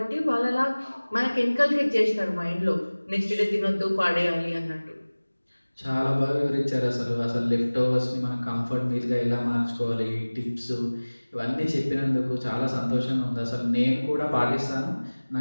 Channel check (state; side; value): inverted; both; correlation -1.00